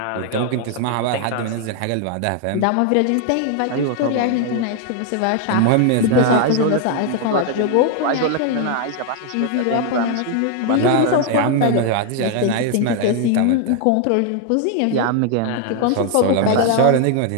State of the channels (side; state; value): both; different; correlation 0.00